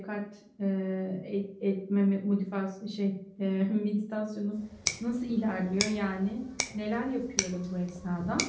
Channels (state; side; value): identical; both; correlation 1.00